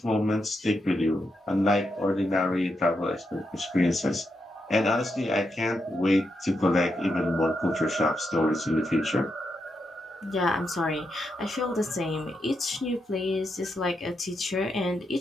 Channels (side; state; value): both; normal; correlation 0.83